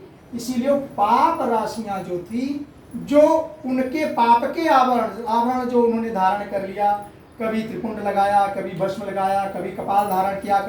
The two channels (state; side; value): identical; both; correlation 1.00